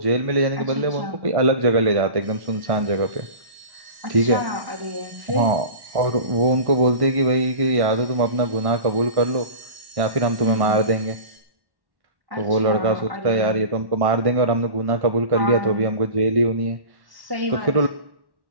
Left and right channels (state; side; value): late; left; 1.1 ms